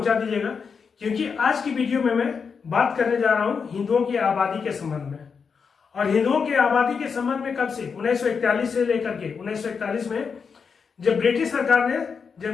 दीजिएगा, क्योंकि आज की वीडियो में मैं बात करने जा रहा हूं हिंदुओं की आबादी के संबंध में। और हिंदुओं की आबादी के संबंध में कब से, 1941 से लेकर के 1941 में जब ब्रिटिश सरकार ने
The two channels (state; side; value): quieter; right; 5.8 dB